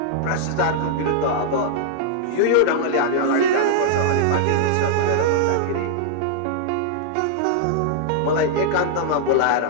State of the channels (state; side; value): different; both; correlation -0.01